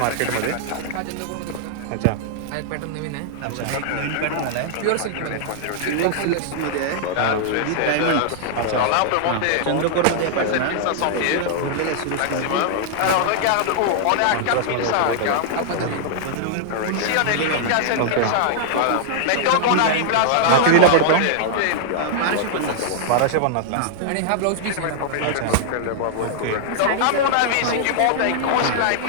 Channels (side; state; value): both; different; correlation -0.01